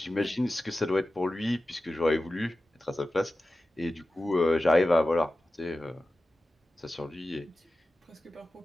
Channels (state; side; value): normal; both; correlation 0.94